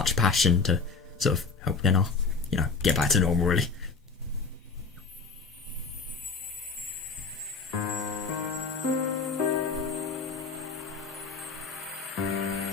passion to sort of help Nena, get back to normal, really.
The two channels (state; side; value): quieter; right; 4.6 dB